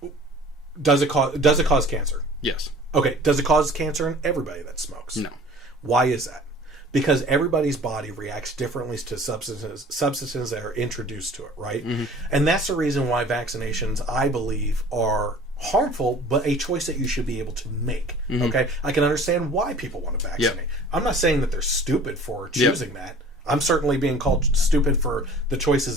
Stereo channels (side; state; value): both; normal; correlation 0.47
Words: Does it cause cancer? Yes. Okay. Does it cause cancer in everybody that smokes? No. Why is that? Because everybody's body reacts differently to substances that are introduced to it, right? And that's the reason why vaccinations, I believe, are harmful, but a choice that you should be able to make. Okay, I can understand why people want to vaccinate. I'm not saying that they're stupid for choosing that. I'm certainly being called stupid for the